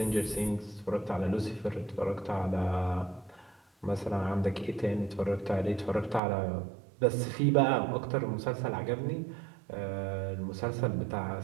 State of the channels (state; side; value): drops out; left; at 6.2 s